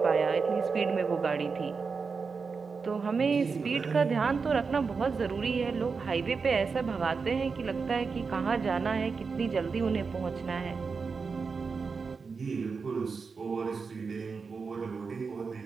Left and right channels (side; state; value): left; quieter; 5.0 dB